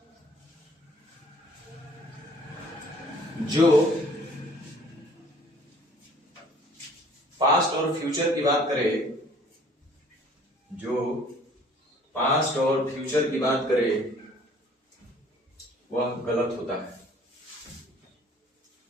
जो पास्ट और फ्यूचर की बात करे, जो पास्ट और फ्यूचर की बात करे, वह गलत होता है।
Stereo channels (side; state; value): both; normal; correlation 0.55